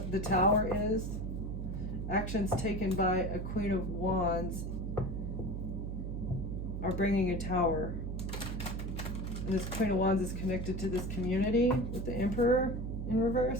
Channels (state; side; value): noise; right; hum, 4 dB below the sound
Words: the Tower is. Actions taken by a Queen of Wands are bringing a Tower. And this Queen of Wands is connected to this community with the Emperor in